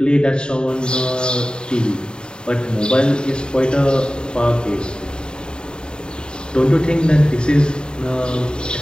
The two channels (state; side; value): late; right; 0.049 ms